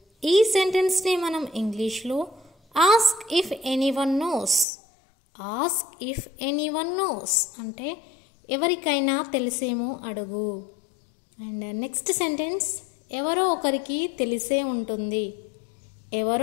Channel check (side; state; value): right; drops out; at 4.7 s